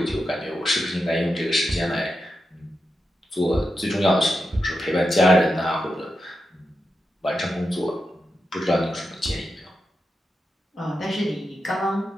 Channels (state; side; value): normal; both; correlation 0.88